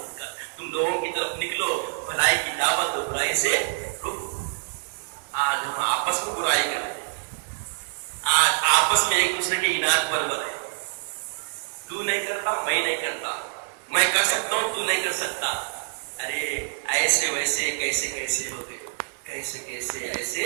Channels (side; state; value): left; silent; digital silence